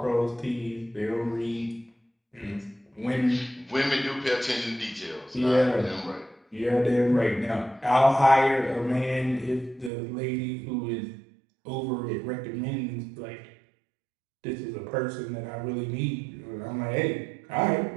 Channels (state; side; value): drops out; left; at 9.9 s